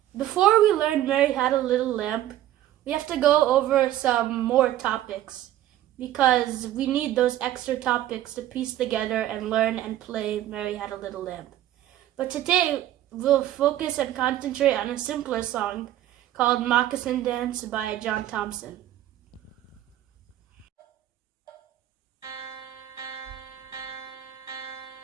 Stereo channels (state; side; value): quieter; left; 13.1 dB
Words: Before we learn Mary Had a Little Lamb, we have to go over some more topics because we need those extra topics to piece together and learn and play Mary Had a Little Lamb. But today we'll focus and concentrate on a simpler song called Moccasin Dance by John Thompson.